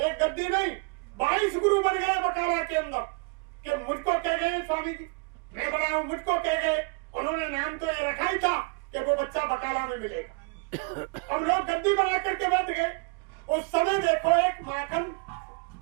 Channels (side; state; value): left; quieter; 31.9 dB